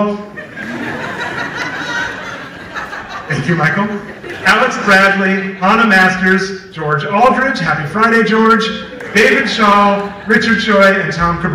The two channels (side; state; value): both; identical; correlation 1.00